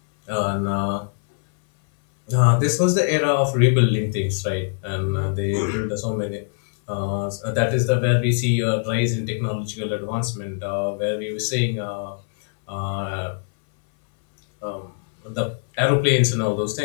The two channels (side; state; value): right; silent; 64 dB below the other